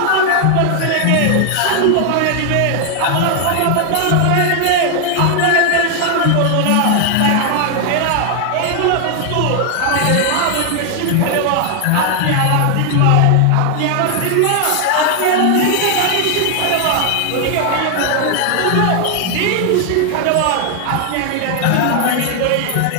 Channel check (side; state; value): both; different; correlation 0.00